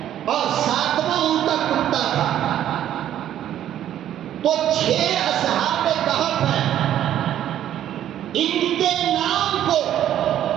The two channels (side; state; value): left; quieter; 11.3 dB